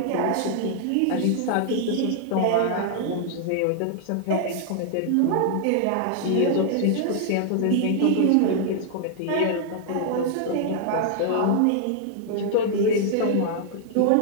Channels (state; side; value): different; both; correlation -0.01